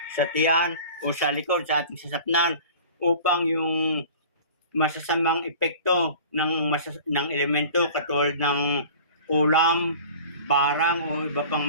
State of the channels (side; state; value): both; inverted; correlation -0.42